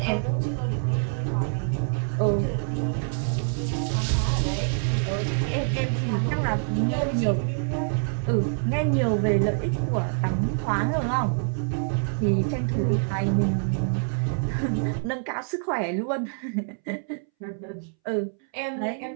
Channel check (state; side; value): silent; left; 61 dB below the other